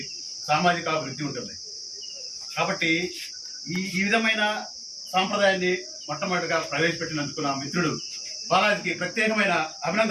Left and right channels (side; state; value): both; identical; correlation 1.00